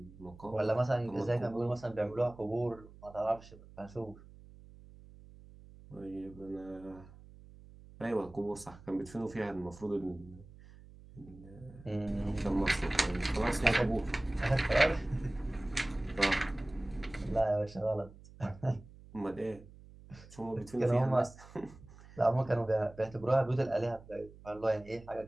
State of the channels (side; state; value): right; noise; hum, 20 dB below the sound